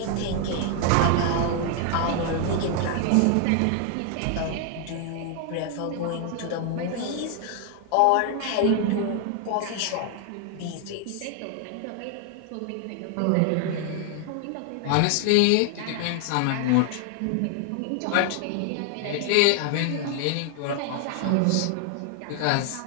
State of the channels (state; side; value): different; both; correlation 0.00